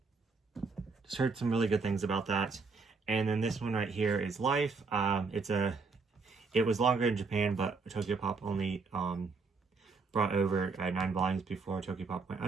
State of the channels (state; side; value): quieter; left; 4.5 dB